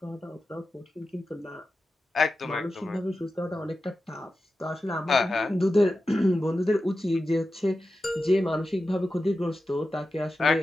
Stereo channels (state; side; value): normal; both; correlation 0.92